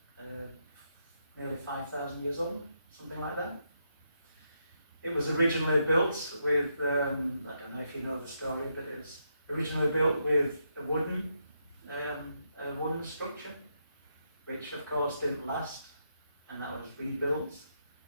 nearly 5,000 years old, something like that. It was originally built with, I don't know if you know the story, but it was originally built with a wooden structure, which of course didn't last, and that was rebuilt.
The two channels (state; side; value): inverted; both; correlation -0.80